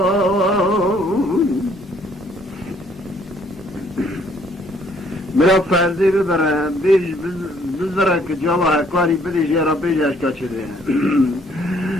مرا فرزی ببره بیش بزره که جواه کاری بدیش یا را بیش اشکا چده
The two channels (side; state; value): both; normal; correlation 0.64